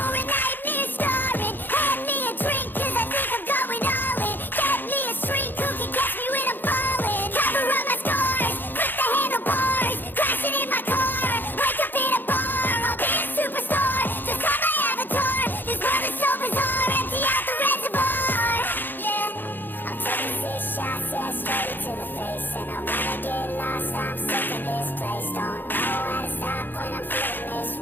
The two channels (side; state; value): right; late; 0.092 ms